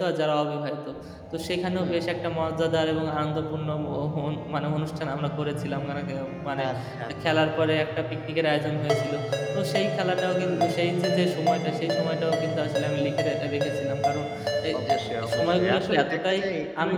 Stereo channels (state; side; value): identical; both; correlation 1.00